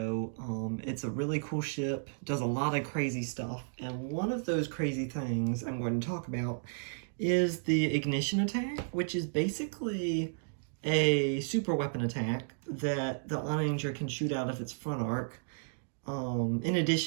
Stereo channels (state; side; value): silent; left; digital silence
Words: it's a really cool ship, does a lot of crazy stuff, and one of those crazy things I'm going to talk about is the ignition attack, which is basically a super weapon attack that the Onager can shoot out of its front arc, in